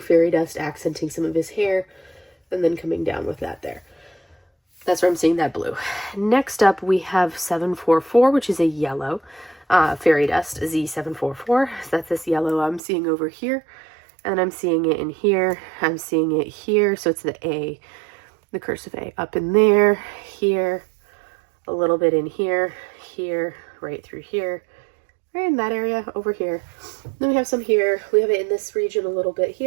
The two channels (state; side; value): drops out; left; at 12.8 s